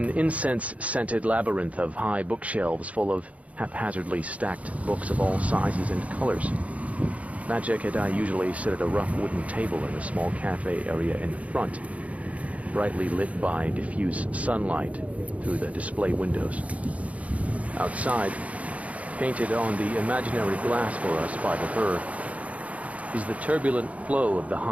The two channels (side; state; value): left; late; 0.067 ms